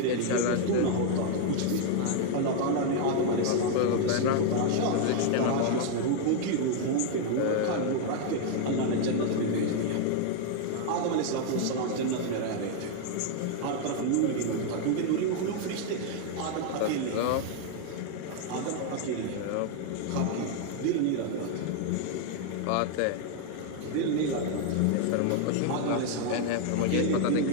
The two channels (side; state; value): both; different; correlation 0.00